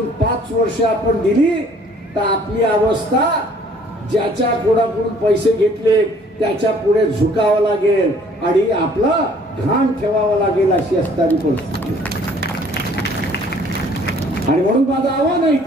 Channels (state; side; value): normal; both; correlation 0.57